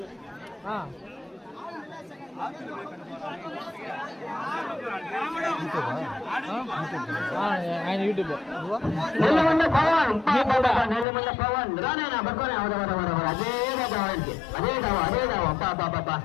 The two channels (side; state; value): right; drops out; at 11.1 s